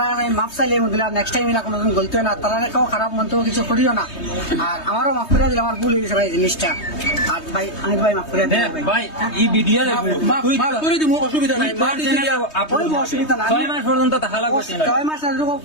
আমি মাপ চাইলে দিলাম নেক্সট টাইম এরা কোনোদিন গলতে হয় না, তারা কেউ খারাপ মন্তব্য কিছু করিও না। আর আমারও মাফ করে দিলাম, আমার ভুল হয়ে গেছে ভাই জিনিসটা। আর ভাই আমি ভাই মাফ করে দিলাম ভাই এই ভিডিও মাফ করে দিব, অসুবিধা নাই। অসুবিধা না, 6 মাস পর্যন্ত থাকা লাগবে না। 6 মাস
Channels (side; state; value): right; late; 3.2 ms